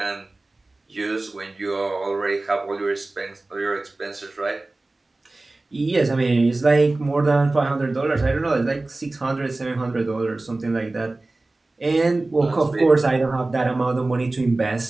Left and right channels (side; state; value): left; quieter; 3.0 dB